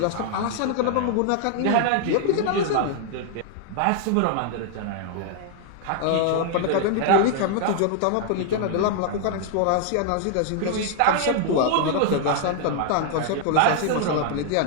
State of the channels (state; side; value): different; both; correlation 0.00